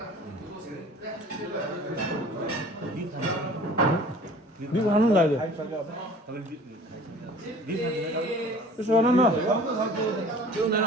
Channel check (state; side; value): normal; both; correlation 0.46